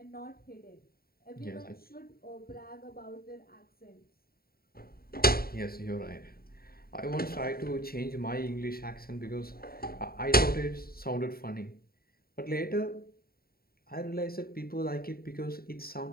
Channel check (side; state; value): right; late; 0.44 ms